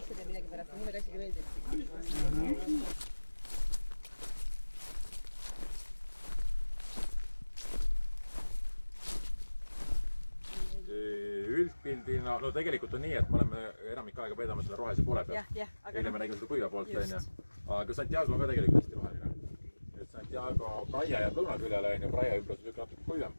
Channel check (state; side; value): inverted; both; correlation -1.00